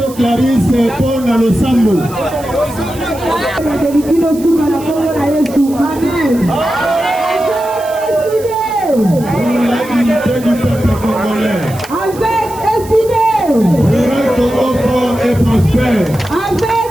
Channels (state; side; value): noise; right; hiss, 18 dB below the sound